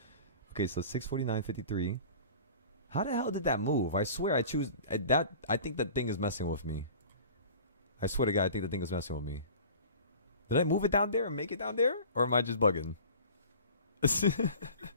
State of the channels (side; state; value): both; inverted; correlation -0.42